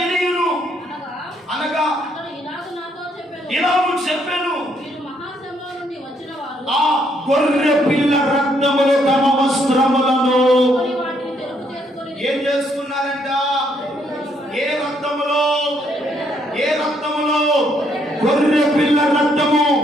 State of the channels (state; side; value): normal; both; correlation 0.71